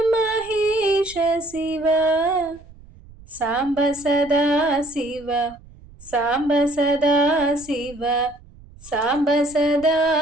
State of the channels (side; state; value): right; noise; rumble, 22 dB below the sound